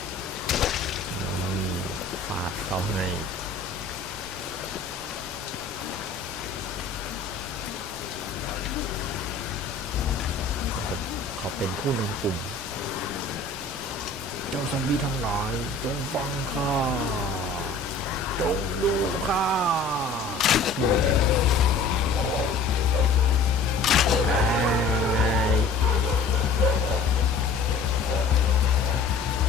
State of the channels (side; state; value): right; quieter; 4.0 dB